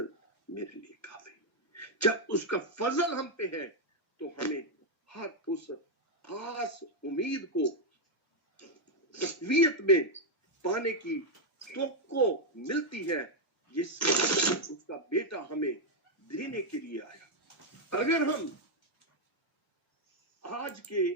मेरे लिए काफी। जब उसका फजल हम पे है तो हमें हर उस खास उम्मीद को तकवीयत में पाने की तवक्को मिलती है, जिससे उसका बेटा हमें देने के लिए आया। अगर हम आज के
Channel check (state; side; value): normal; both; correlation 0.01